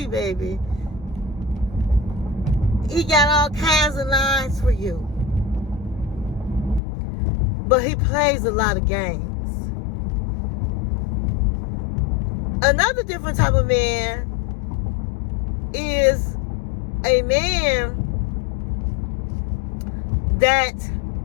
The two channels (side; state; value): right; drops out; at 6.8 s